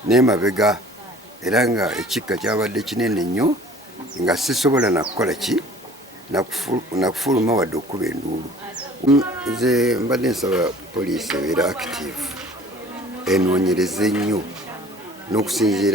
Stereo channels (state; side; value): normal; both; correlation 0.49